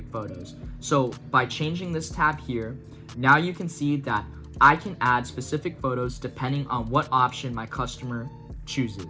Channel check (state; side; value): identical; both; correlation 1.00